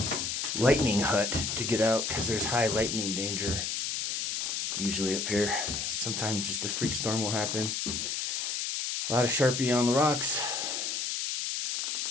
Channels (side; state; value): left; noise; hiss, 1 dB below the sound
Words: lightning hut to get out, because there's high lightning danger usually up here. Sometimes just a freak storm will happen. A lot of Sharpie on the rocks,